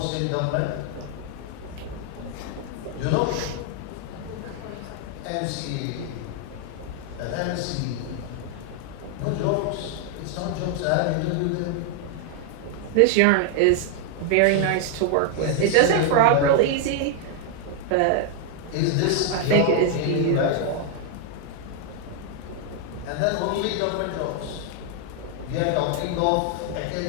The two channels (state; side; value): different; both; correlation 0.00